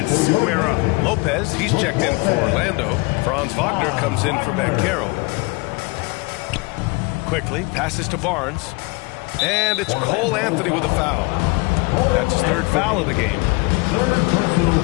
square up. Lopez, he's checked in for Orlando. Franz Wagner comes in for Banchero. Quickly, passes to Barnes. And it's Cole Anthony with a foul. That's his 3rd foul of the game. 3rd personal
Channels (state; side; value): quieter; right; 26.6 dB